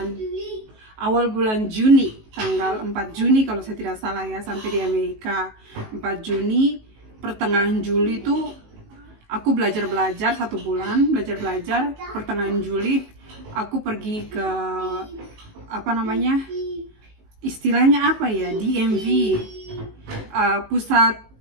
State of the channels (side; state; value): left; late; 19 ms